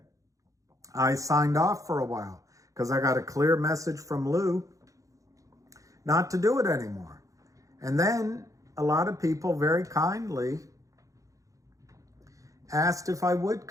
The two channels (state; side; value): late; left; 0.16 ms